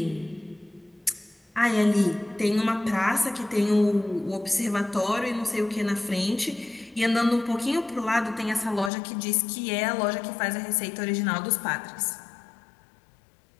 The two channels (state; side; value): drops out; right; at 8.9 s